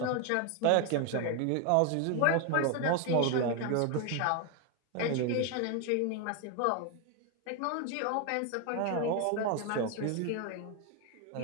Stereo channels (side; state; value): both; different; correlation 0.01